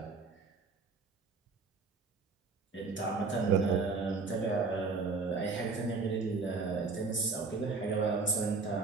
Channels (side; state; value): left; quieter; 4.2 dB